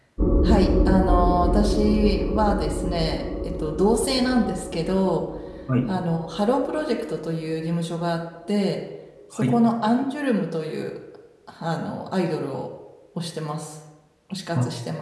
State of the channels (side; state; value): both; identical; correlation 1.00